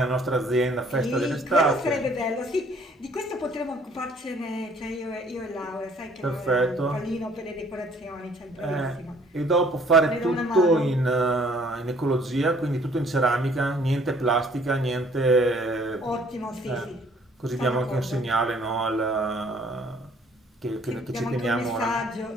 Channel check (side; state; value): both; normal; correlation 0.59